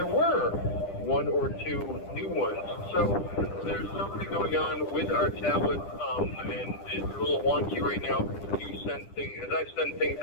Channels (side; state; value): right; late; 10 ms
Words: were 1 or 2 new ones. So there's something going on with our tablet, and it's a little wonky right now. You send things, as I send things